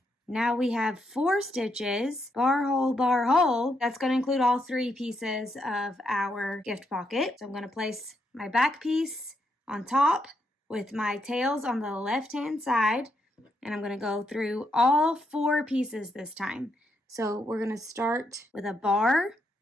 Now we have 4 stitches, bar, hole. That's going to include all 3 pieces of our gift pocket. So I'm going to place my back piece on top with my tails on the left-hand side, and I'm going to go through all 4 pieces this time. So we're going to start with a bar.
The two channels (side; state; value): both; normal; correlation 0.79